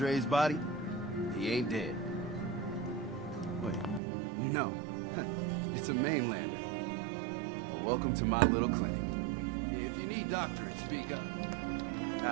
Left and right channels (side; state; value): left; drops out; at 4.0 s